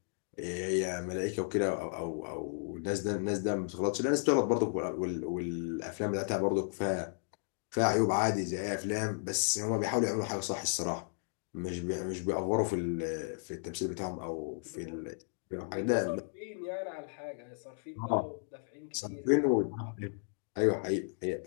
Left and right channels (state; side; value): silent; right; digital silence